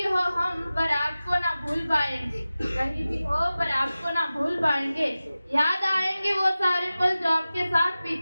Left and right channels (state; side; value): inverted; both; correlation -0.96